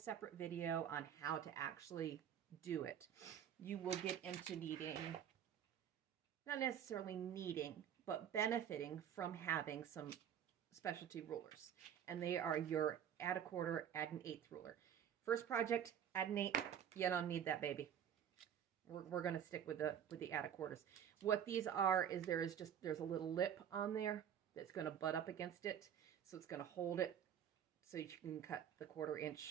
video on how to actually do it, you will get into needing, not necessarily needing, but benefiting from having some specialty rulers. And they are your add a quarter, add an eighth ruler. First project, add an eighth, you don't need that baby. We're going to stick with the add a quarters. What these are is there's a little lip on there that's going to butt up against it, so it's going to hold it so you can cut the 1/4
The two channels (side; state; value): left; quieter; 9.1 dB